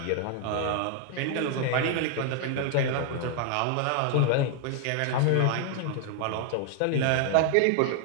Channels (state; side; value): different; both; correlation 0.00